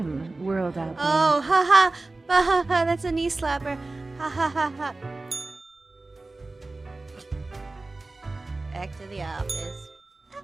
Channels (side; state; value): left; quieter; 3.2 dB